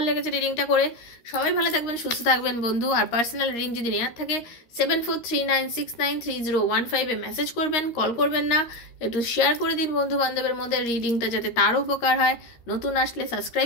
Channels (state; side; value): late; right; 13 ms